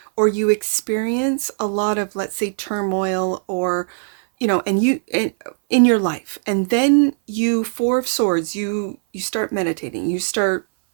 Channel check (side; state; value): left; silent; 60 dB below the other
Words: or you experience a lot of, let's say, turmoil, or and in your life, and then you, Four of Swords, you start meditating, you start